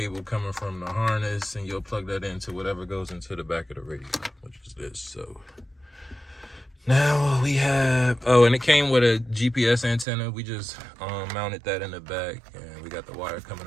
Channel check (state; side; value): drops out; left; at 10.1 s